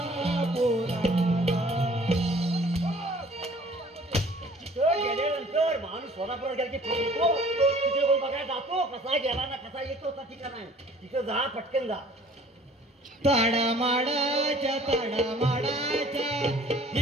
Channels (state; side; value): normal; both; correlation 0.53